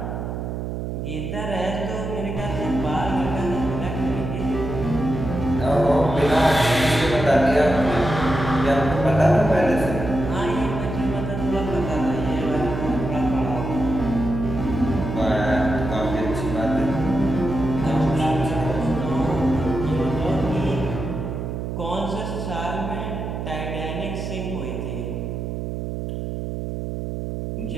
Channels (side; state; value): right; noise; hum, 4 dB below the sound